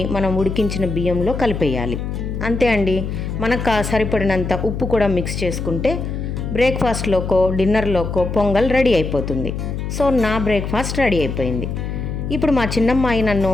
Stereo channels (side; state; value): left; noise; hum, 4 dB below the sound